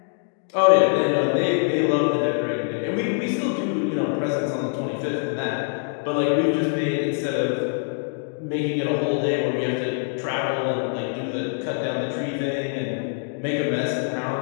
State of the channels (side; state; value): right; silent; 63 dB below the other